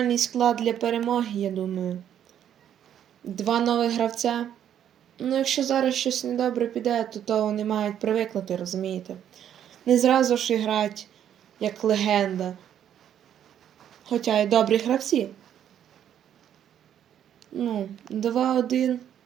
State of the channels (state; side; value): quieter; left; 9.9 dB